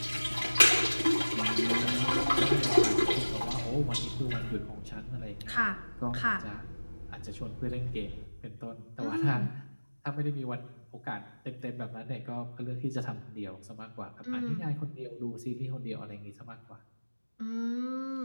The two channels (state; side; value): inverted; both; correlation -1.00